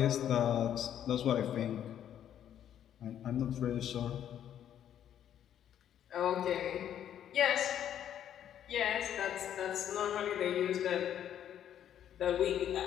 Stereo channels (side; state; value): right; quieter; 10.2 dB